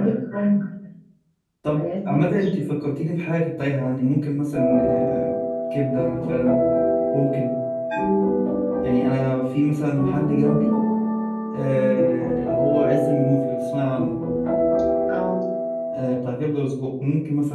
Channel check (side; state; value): both; identical; correlation 1.00